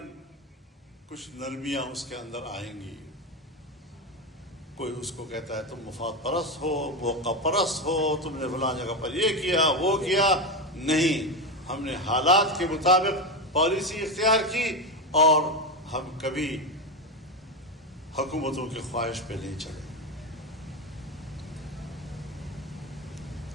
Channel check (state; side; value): normal; both; correlation 0.14